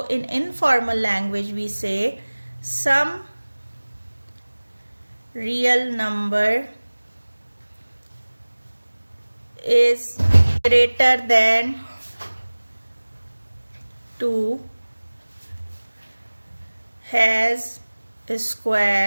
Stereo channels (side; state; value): both; inverted; correlation -1.00